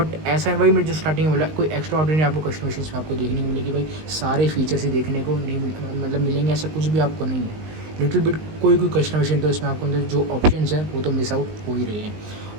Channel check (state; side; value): late; left; 19 ms